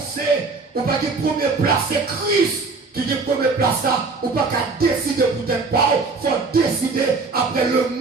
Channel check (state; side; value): quieter; left; 4.1 dB